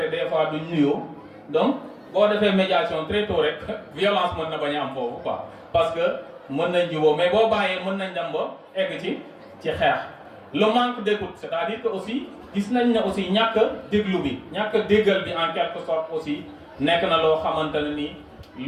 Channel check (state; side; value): identical; both; correlation 1.00